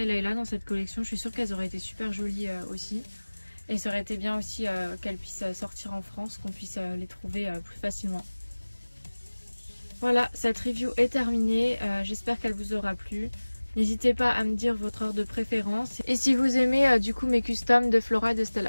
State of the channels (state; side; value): inverted; both; correlation -1.00